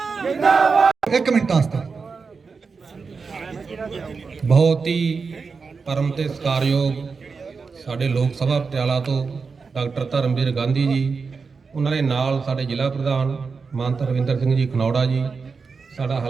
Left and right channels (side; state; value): left; quieter; 4.9 dB